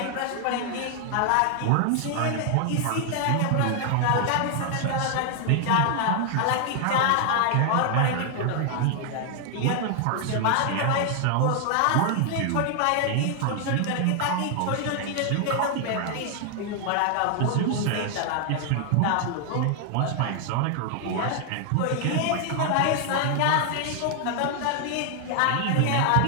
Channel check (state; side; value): different; both; correlation 0.00